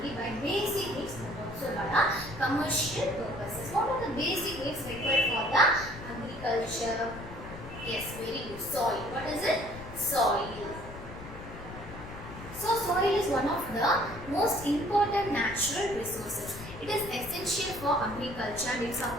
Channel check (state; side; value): noise; left; rumble, 13 dB below the sound